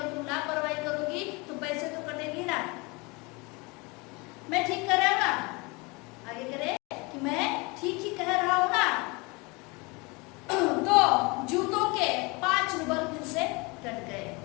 तुम लापरवाही करोगी तो पैसे तो कटेंगे ना। मैं ठीक कर रहा हूँ ना? आगे करे कि मैं ठीक ही कह रहा हूँ ना? तो जूतों के 5 रूबल फिर से कट गए,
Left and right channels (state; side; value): quieter; right; 26.9 dB